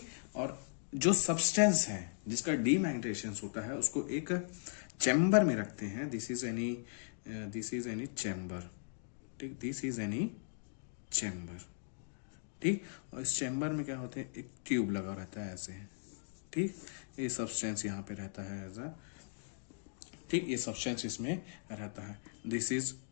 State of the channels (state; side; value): silent; right; digital silence